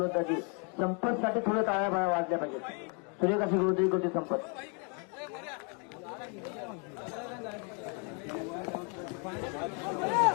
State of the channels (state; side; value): quieter; right; 36.4 dB